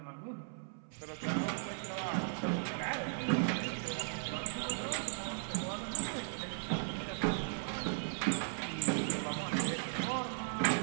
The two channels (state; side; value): silent; left; 53 dB below the other